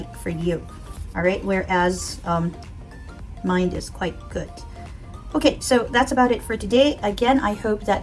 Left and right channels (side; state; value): both; identical; correlation 1.00